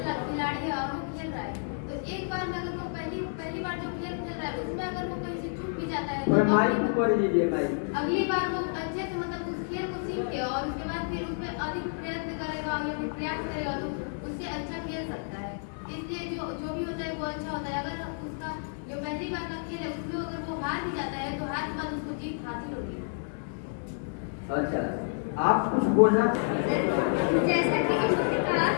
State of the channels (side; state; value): right; silent; digital silence